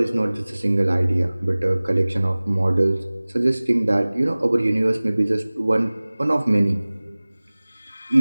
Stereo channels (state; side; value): inverted; both; correlation -0.99